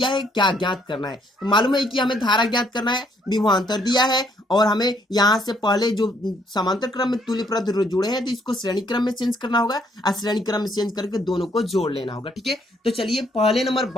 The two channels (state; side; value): normal; both; correlation 0.68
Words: है, क्या ज्ञात करना है। तो मालूम है कि हमें धारा ज्ञात करना है, विभवांतर दिया है, और हमें यहाँ से पहले जो समांतर क्रम में तुल्य प्रतिरोध जुड़े हैं तो इसको श्रेणी क्रम में चेंज करना होगा, और श्रेणी क्रम में चेंज करके दोनों को जोड़ लेना होगा। ठीक है, तो चलिए पहले नंबर